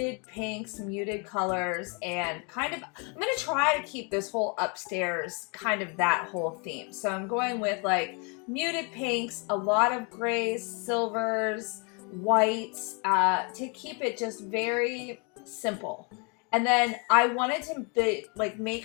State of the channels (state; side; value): quieter; right; 33.9 dB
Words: pinks, muted colors, and kind of, I'm going to try to keep this whole upstairs kind of that whole theme. So I'm going with like muted pinks, a lot of grays, silvers, whites, to keep it just very simple. And then I wanted to